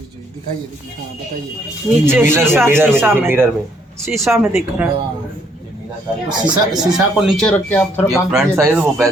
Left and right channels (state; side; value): normal; both; correlation 0.68